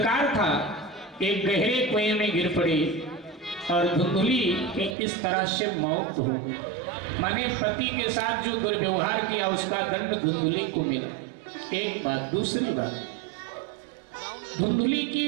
था, एक गहरे कुएं में गिर पड़ी और धुंधली की इस तरह से मौत हो गई। माने पति के साथ जो दुर्व्यवहार किया उसका दंड धुंधली को मिला। एक बात। दूसरी बात, धुंधली की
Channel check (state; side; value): drops out; left; at 5.0 s